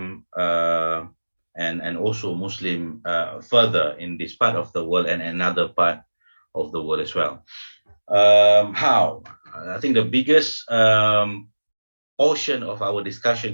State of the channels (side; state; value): both; inverted; correlation -1.00